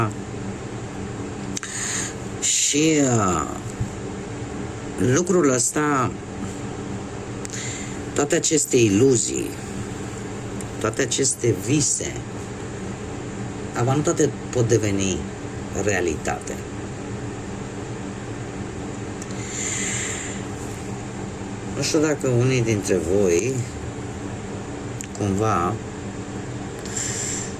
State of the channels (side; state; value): both; identical; correlation 1.00